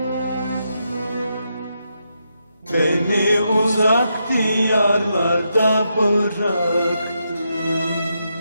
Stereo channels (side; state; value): both; inverted; correlation -0.82